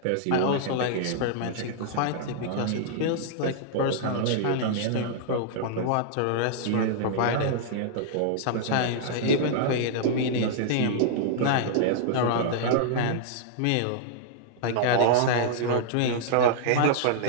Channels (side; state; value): both; different; correlation -0.01